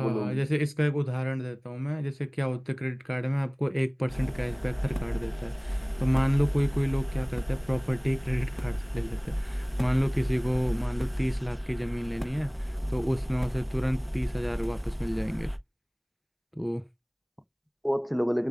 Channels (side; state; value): both; identical; correlation 1.00